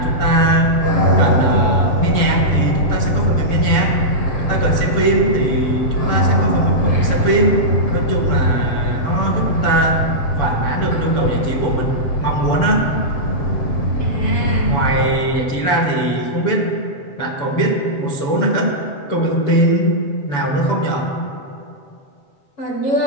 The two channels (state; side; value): late; right; 7.0 ms